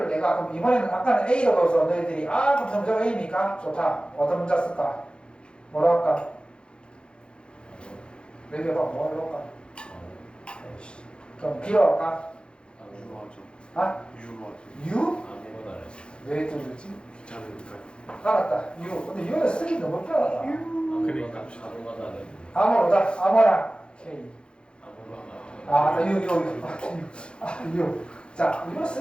내가 그럼 이번에는 아까는 A로 넣어서 너희들이 그럼 점점 A입니까? 좋다. 어떤 문자 쓸까? 뭐라 할까? 얘기해봐. 뭐 할까? 그럼 B로 할까? 유로 하죠. 아? 유로 하죠. U? 아무거나 안 했어. 왜 뚫렸지? 귀찮으니까. 알았다. U. 근데 U는 쓰기 너무 편하다. 그러니까. 아무거나 안 했어. 아무로다. 아무나. K. 아무거나. U. 자, U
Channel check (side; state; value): right; late; 0.054 ms